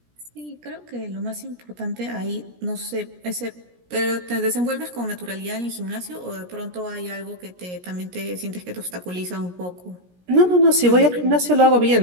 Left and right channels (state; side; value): late; left; 17 ms